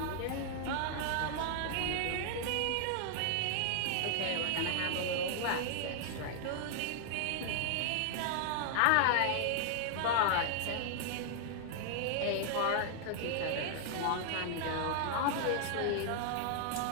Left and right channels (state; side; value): different; both; correlation -0.01